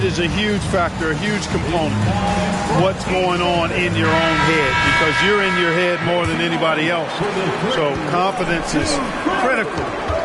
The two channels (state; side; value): identical; both; correlation 1.00